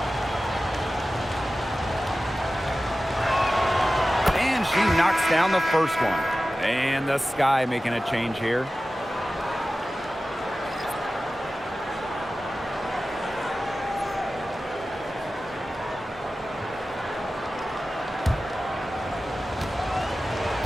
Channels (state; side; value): normal; both; correlation 0.95